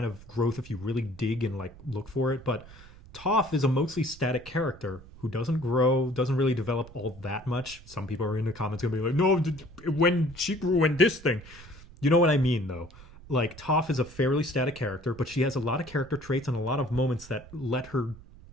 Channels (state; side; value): noise; right; rumble, 19 dB below the sound